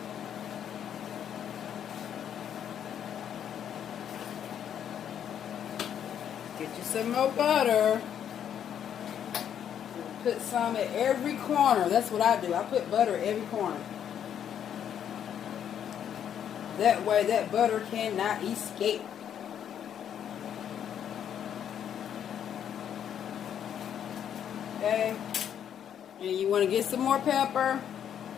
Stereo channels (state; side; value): quieter; right; 9.2 dB